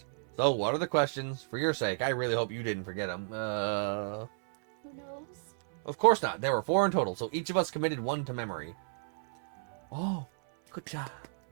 So, what are the questions? For your sake, I really hope you didn't forget them. Who knows? Of course not. There were 4 in total, so each of us committed 1 to memory. Oh, good job.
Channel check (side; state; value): left; silent; 56 dB below the other